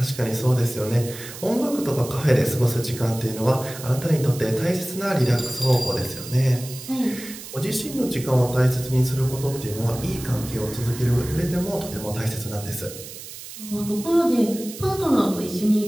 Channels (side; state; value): right; noise; hiss, 13 dB below the sound